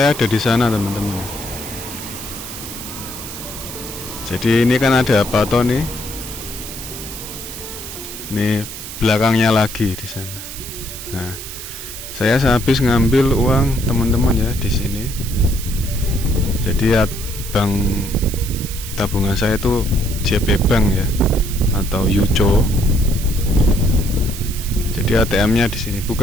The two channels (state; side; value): noise; right; hiss, 10 dB below the sound